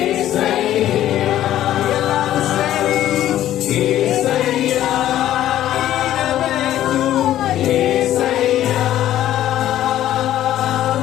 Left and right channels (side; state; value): right; quieter; 12.6 dB